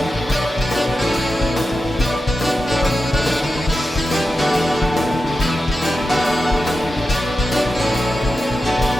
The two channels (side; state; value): both; normal; correlation 0.91